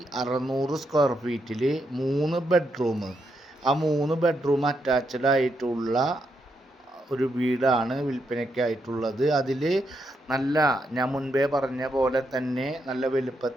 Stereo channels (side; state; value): both; normal; correlation 0.80